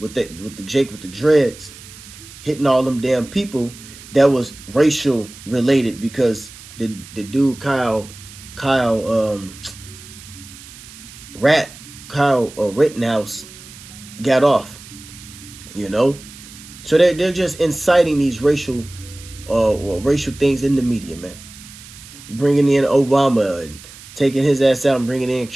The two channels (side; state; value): right; noise; hiss, 18 dB below the sound